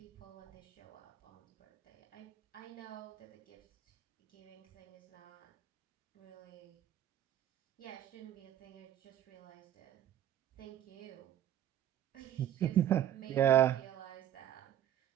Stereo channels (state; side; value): quieter; left; 11.2 dB